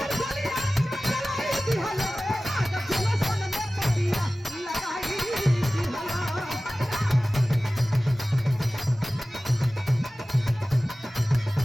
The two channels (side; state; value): both; normal; correlation 0.97